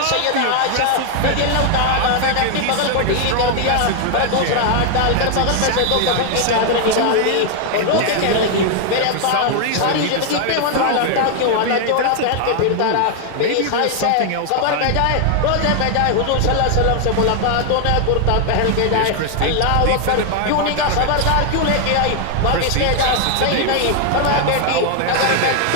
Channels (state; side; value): different; both; correlation 0.00